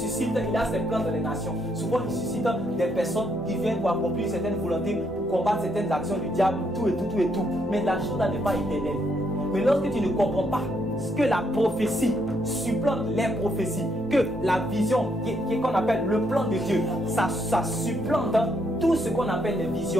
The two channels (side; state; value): both; normal; correlation 0.74